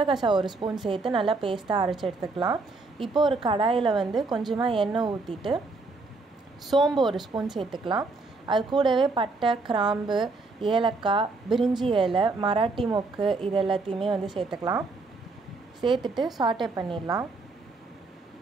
1 ஸ்பூன் சேர்த்து நல்லா பேஸ்ட்டாக அரைச்சி எடுத்துக்கலாம். இப்போது ஒரு கடாயில் கொஞ்சமாக எண்ணெய் ஊற்றிட்டு சோம்பு 1 ஸ்பூன் சேர்த்துக்கலாம். அது கூடவே பட்டை, கிராம்பு, ஏலக்காய், பிரிஞ்சி இலை, மராட்டி மொக்கு இது எல்லாத்தையுமே சேர்த்துக்கலாம். சேர்த்துட்டு சாட்டே பண்ணிடலாம்.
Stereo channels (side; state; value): left; quieter; 3.7 dB